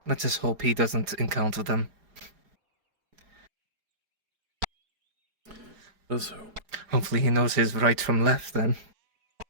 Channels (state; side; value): late; left; 5.0 ms